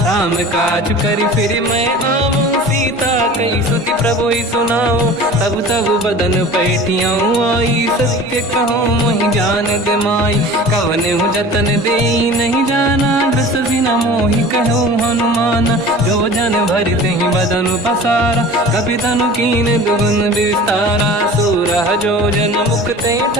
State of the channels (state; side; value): normal; both; correlation 0.40